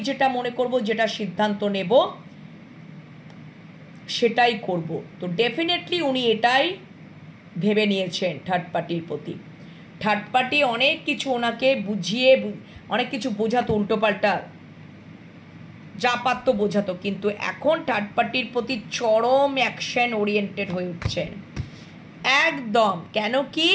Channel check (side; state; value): both; identical; correlation 1.00